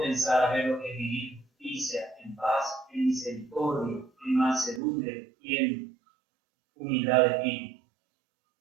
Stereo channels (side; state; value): left; drops out; at 4.8 s